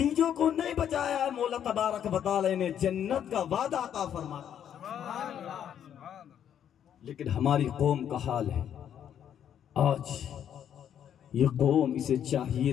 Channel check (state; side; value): quieter; right; 9.5 dB